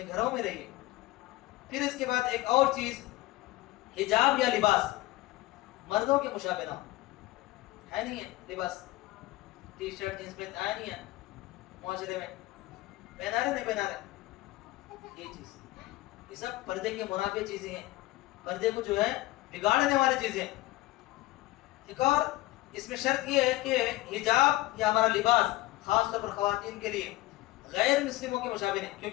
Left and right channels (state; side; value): quieter; right; 18.3 dB